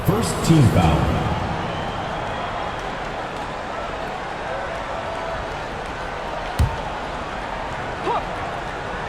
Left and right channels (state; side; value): identical; both; correlation 1.00